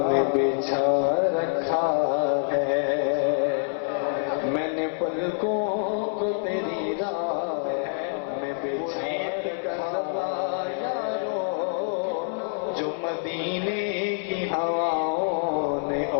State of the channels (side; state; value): right; silent; 61 dB below the other